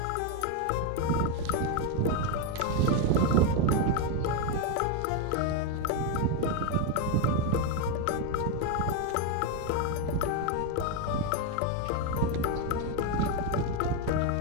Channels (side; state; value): both; different; correlation 0.02